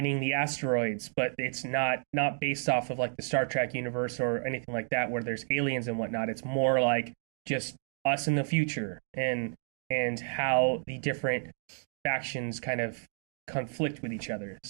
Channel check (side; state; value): left; silent; 57 dB below the other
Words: the asteroids, but it's not based off of like the Star Trek universe or anything like that where there's aliens and whatnot. It's more like just us in the future and how the different factions kind of conflict with each other.